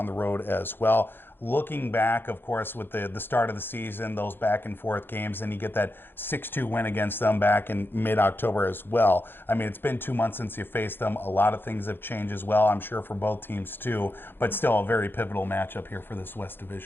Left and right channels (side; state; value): right; late; 0.10 ms